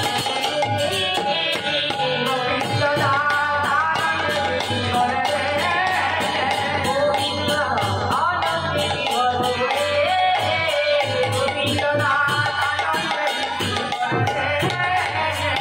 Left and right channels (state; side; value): identical; both; correlation 1.00